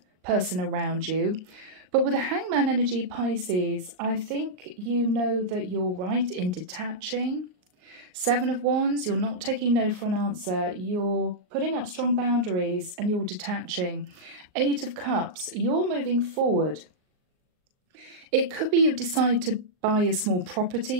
person around you. But with the Hangman energy, Pisces, I think you know that you're right in detaching. Seven of Wands, you're not taking no for an answer. You're putting up strong boundaries and you're detaching. Eight of Cups, you're moving forward. It could be you decide to buy a small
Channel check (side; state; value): left; late; 38 ms